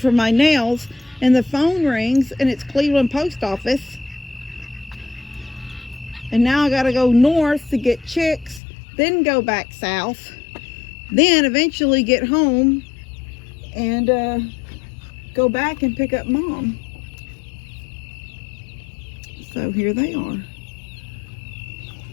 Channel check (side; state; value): right; drops out; at 8.6 s